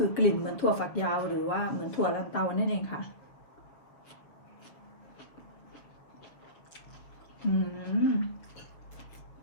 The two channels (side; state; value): right; late; 6.8 ms